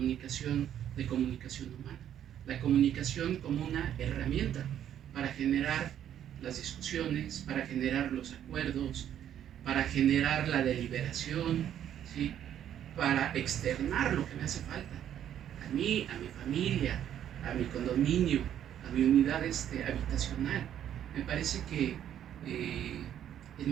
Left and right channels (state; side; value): quieter; left; 10.3 dB